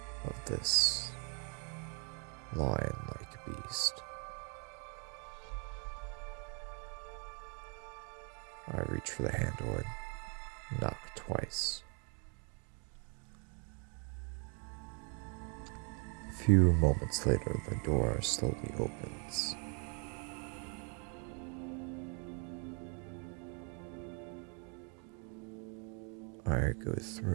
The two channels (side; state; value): left; quieter; 38.4 dB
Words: of this lion-like beast. I reach for the handle and knock twice. A few moments later, the door slowly opens. I go